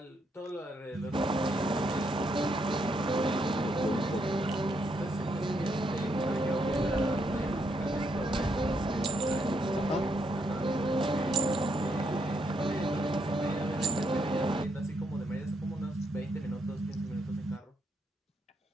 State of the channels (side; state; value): both; normal; correlation 0.76